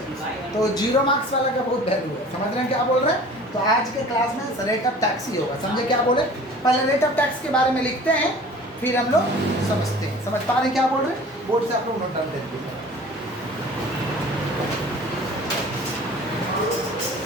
तो 0 मार्क्स वाला का बहुत वैल्यू है। समझ रहे हैं क्या बोल रहे हैं? तो आज के क्लास में रेट ऑफ टैक्स ही होगा। समझे क्या बोले? पहले रेट ऑफ टैक्स के बारे में लिखते हैं, फिर हम लोग समझते हैं। समझ पा रहे क्या बोल रहे हैं? बोर्ड से आप लोग नोट डाउन कर दीजिए।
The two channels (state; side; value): normal; both; correlation 0.45